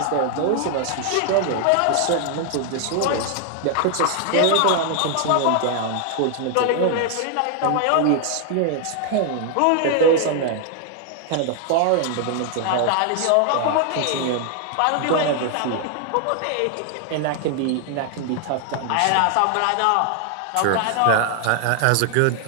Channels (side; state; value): both; different; correlation 0.00